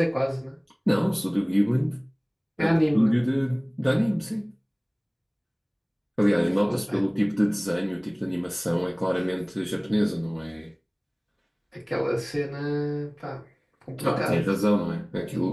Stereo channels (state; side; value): identical; both; correlation 1.00